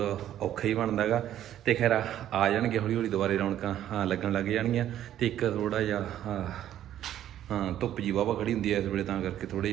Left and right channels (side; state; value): left; quieter; 11.7 dB